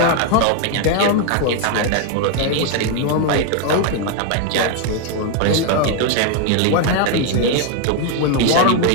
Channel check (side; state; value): both; different; correlation 0.01